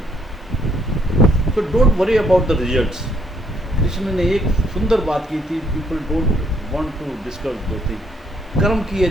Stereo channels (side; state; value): both; normal; correlation 0.69